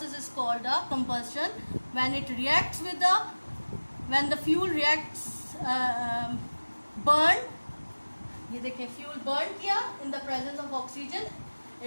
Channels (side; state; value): both; inverted; correlation -1.00